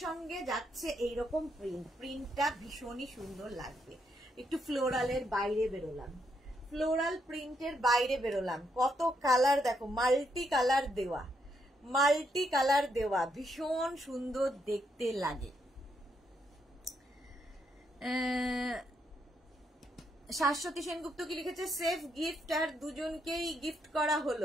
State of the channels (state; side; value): normal; both; correlation 0.77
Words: সঙ্গে যাচ্ছে এইরকম প্রিন্ট। প্রিন্টটা ভীষণই সুন্দর লাগবে। একটু ফ্লোরালের বাইরে বেরোলাম, ফ্লোরাল প্রিন্টের বাইরে বেরোলাম। কত কালার দেখো, মাল্টি কালার দেওয়া, মাল্টি কালার দেওয়া, ভীষণ সুন্দর দেখতে লাগে। শাশ্বতী সেনগুপ্ত কি লিখেছে, সেফ গিফট, আর দুজনকেই গিফট করা